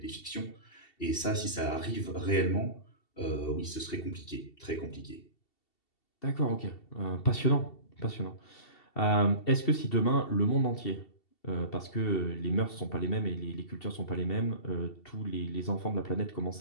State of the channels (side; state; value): right; late; 2.7 ms